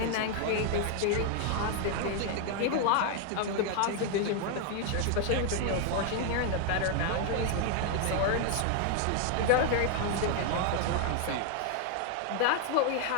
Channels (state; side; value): different; both; correlation 0.00